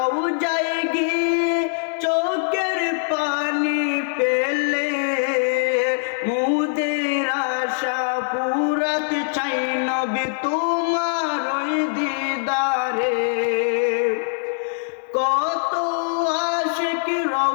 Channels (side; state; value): right; silent; 64 dB below the other